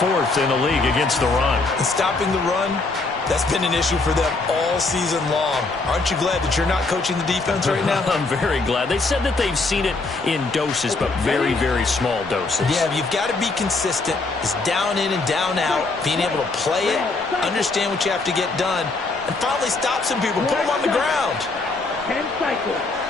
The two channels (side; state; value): right; quieter; 3.6 dB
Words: in the league against the run. And stopping the run, that's been an issue for them all season long. Aren't you glad that you're not coaching the defense right now? I'm very glad. They said that they've seen it in doses, but very, very small doses. Yeah, you've got to be consistent. It's down in and down out, being able to play it, understand what you have to get done, and finally stop some people, put them on the ground. 10 cycles.